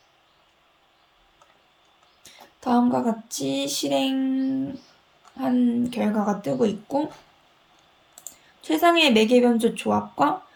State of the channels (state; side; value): identical; both; correlation 1.00